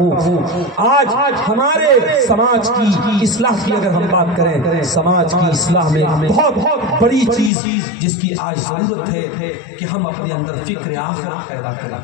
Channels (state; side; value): drops out; right; at 7.5 s